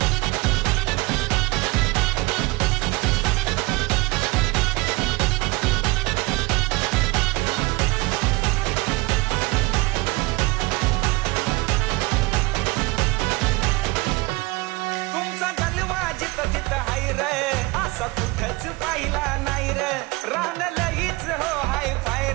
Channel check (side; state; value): left; quieter; 23.2 dB